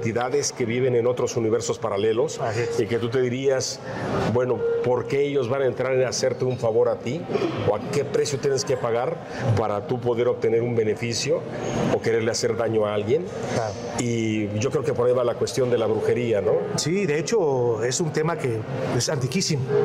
que viven en otros universos paralelos y que tú te dirías, bueno, ¿por qué ellos van a entrar en hacerte un favor a ti? ¿O a qué precio tienes que pagar para tú poder obtener un beneficio o quererle hacer daño a alguien? Claro. Y yo creo que por ahí va la cuestión de la brujería, ¿no? Sí, de hecho es un tema que es antiquísimo,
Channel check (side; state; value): both; identical; correlation 1.00